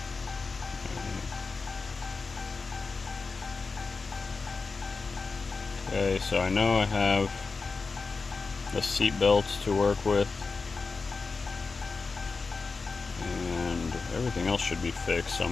Okay, so I know I have the seat belts to work with, and everything else should be fixed, so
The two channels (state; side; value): quieter; right; 4.3 dB